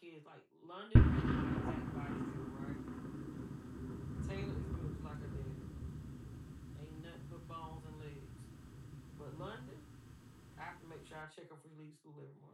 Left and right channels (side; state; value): both; identical; correlation 1.00